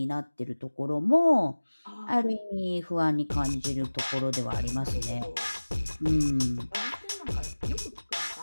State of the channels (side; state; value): both; inverted; correlation -1.00